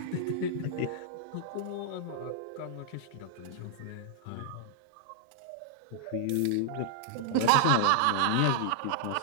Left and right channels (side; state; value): both; different; correlation -0.01